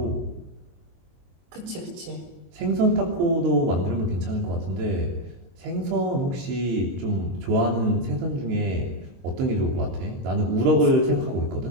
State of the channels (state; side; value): late; left; 22 ms